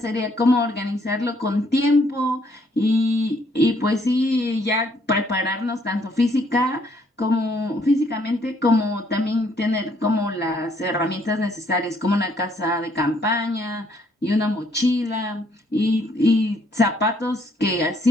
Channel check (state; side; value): normal; both; correlation 0.67